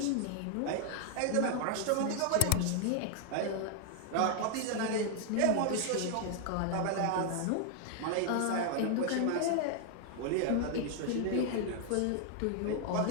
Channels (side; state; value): both; different; correlation 0.00